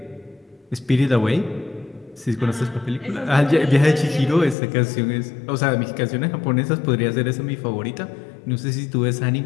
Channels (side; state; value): right; drops out; at 4.5 s